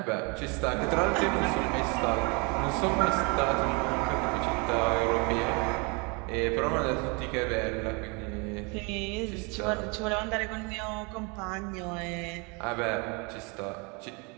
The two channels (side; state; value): left; quieter; 31.0 dB